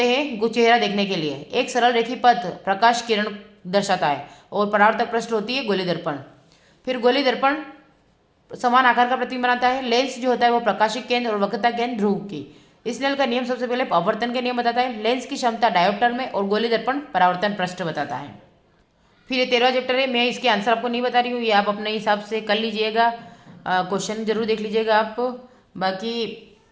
हैं चेहरा देखने के लिए। एक सरल रेखी पथ प्रकाश किरण दर्शाता है और परावर्तक पृष्ठ होती है गोली दर्पण। फिर गोली दर्पण समान आकार का प्रतिबिंब बनाता है। लेंस जो होता है वो प्रकाशिक केंद्र और वक्रता केंद्र ध्रुव की। स्नेल का नियम सबसे पहले अपवर्तन के नियम बताता है। लेंस की क्षमता डायोप्टर में और गोली दर्पण परावर्तन पृष्ठ बताता है। फिर ये 13वां चैप्टर है, मैं इसके आंसर आपको नहीं बता रही हूँ, ये आप अपने हिसाब से कर लीजिएगा। क्वेश्चन जरूर देख लीजिएगा आप, बाकी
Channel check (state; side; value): identical; both; correlation 1.00